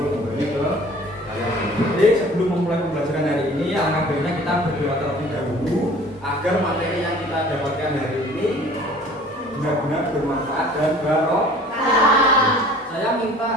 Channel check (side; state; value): both; normal; correlation 0.48